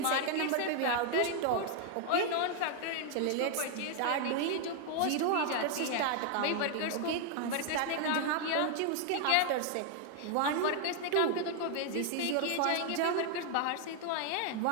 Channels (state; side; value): different; both; correlation 0.00